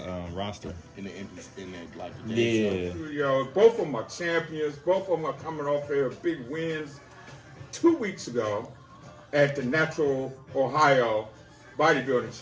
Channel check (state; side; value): identical; both; correlation 1.00